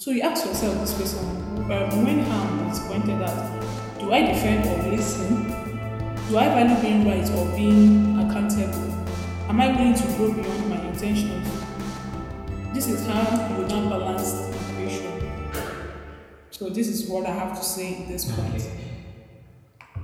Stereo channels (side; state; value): both; identical; correlation 1.00